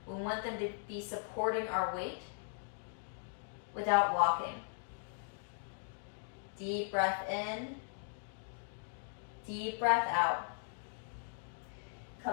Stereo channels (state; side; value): silent; right; digital silence